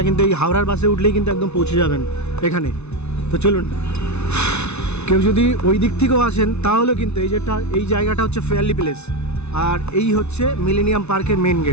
কিন্তু এই হাওড়ার বাসে উঠলেই কিন্তু একদম পৌঁছে যাবেন এখানে। তো চলুন, কেউ যদি ওই দিক থেকেও আসেন তাহলে কিন্তু এই জায়গাটা হচ্ছে ফেয়ারলি প্লেস। আর এই হচ্ছে মিলেনিয়াম পার্কের মেন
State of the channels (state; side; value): late; right; 0.81 ms